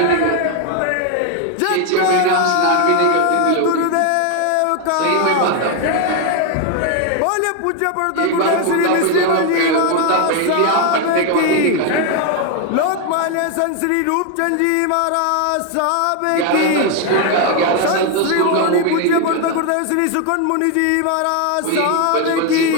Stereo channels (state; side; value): different; both; correlation 0.01